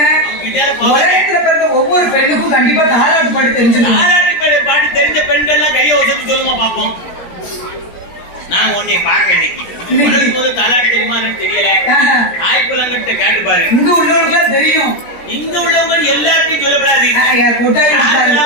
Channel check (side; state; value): right; late; 17 ms